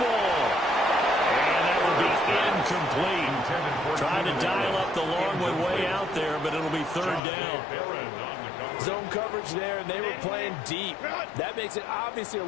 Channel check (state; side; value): drops out; right; at 7.2 s